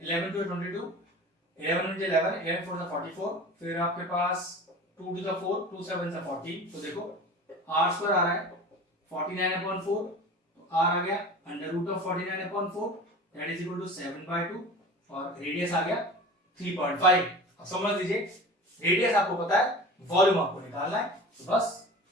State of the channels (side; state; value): both; normal; correlation 0.37